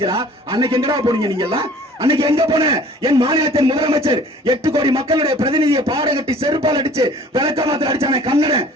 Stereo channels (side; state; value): both; normal; correlation 0.50